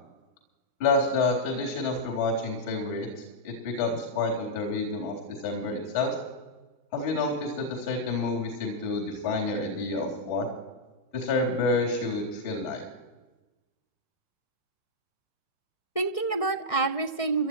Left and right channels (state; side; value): late; right; 1.6 ms